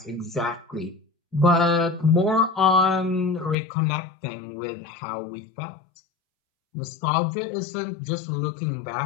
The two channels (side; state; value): right; drops out; at 3.6 s